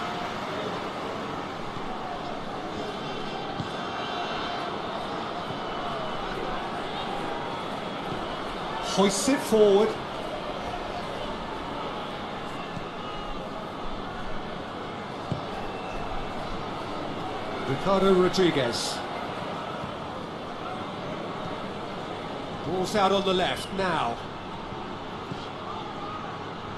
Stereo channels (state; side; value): identical; both; correlation 1.00